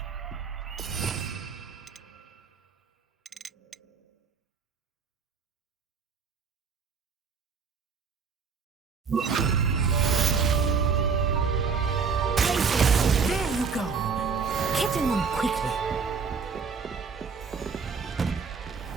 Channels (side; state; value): left; quieter; 5.6 dB